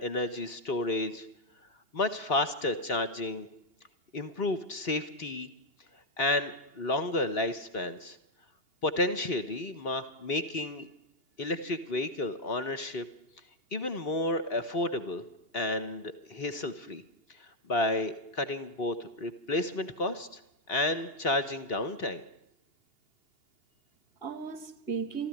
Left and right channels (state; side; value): late; right; 2.8 ms